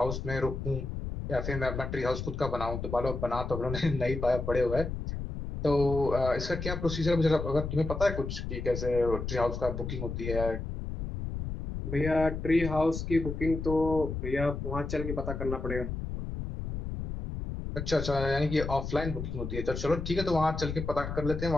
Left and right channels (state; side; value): noise; left; rumble, 5 dB below the sound